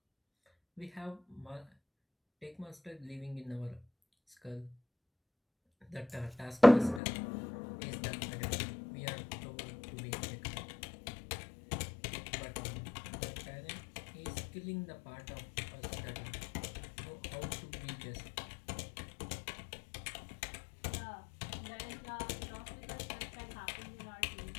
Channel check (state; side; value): drops out; right; at 7.0 s